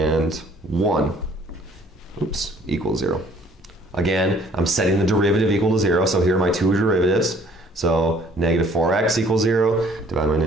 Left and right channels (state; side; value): normal; both; correlation 0.57